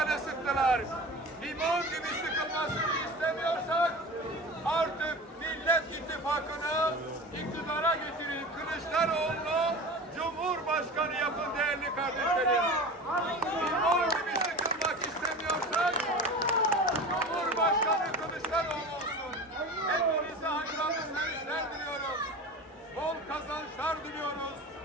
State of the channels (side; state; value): both; normal; correlation 0.33